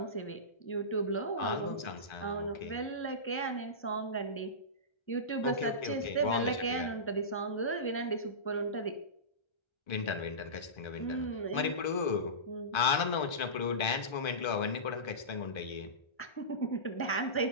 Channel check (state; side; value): late; right; 1.3 ms